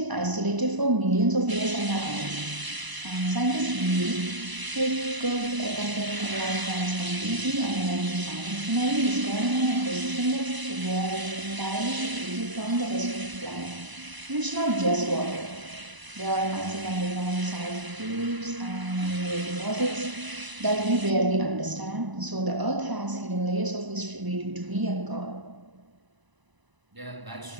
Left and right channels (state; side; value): late; left; 1.0 ms